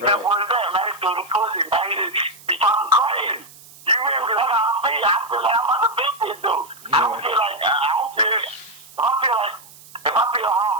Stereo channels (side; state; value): right; noise; hiss, 21 dB below the sound